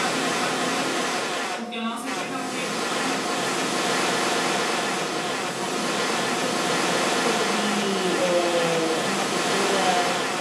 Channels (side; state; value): both; identical; correlation 1.00